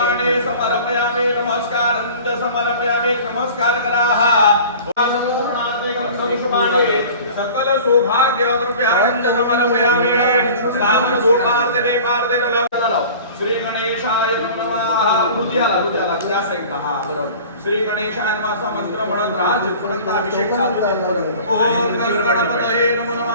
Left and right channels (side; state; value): both; inverted; correlation -0.42